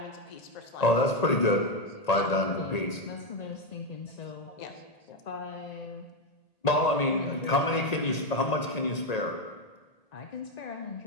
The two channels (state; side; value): late; right; 1.8 ms